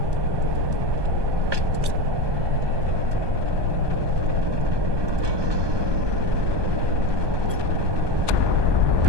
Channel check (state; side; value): late; left; 1.2 ms